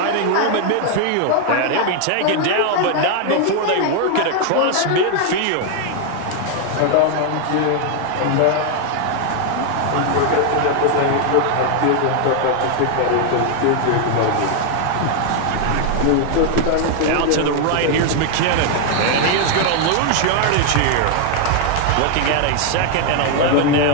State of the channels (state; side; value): different; both; correlation 0.00